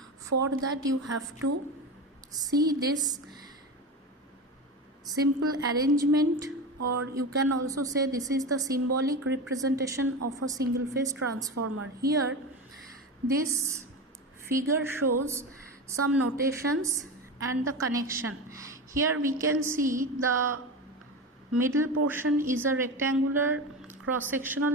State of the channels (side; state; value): both; normal; correlation 0.23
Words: for that you have to see this simple arrangement, or you can also say this is the symbolic representation of a single phase transformer. Here this figure shows some notations and the connection. Here we can see the middle portion is a rectangular